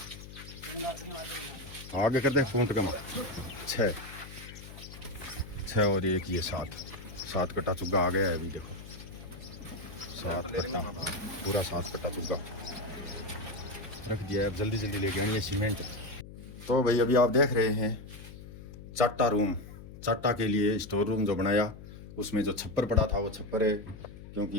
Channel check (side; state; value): left; noise; hum, 14 dB below the sound